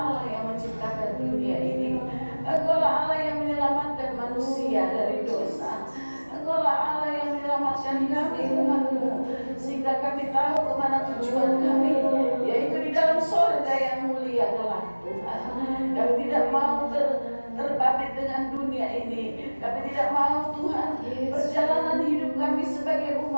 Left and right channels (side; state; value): both; inverted; correlation -1.00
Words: yang menciptakan dunia ini. Engkau lah Allah yang menyelamatkan manusia dari dosa. Engkau lah Allah yang menyelamatkan kami umat-Mu, sehingga kami tahu kemana tujuan kami, yaitu di dalam surga yang mulia kelak Tuhan. Kami tidak mau terbabit dengan dunia ini. Kami tidak mau Tuhan perjalanan hidup kami sebagai